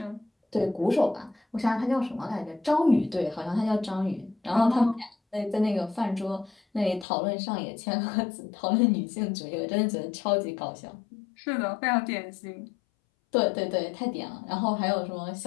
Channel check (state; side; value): drops out; right; at 7.1 s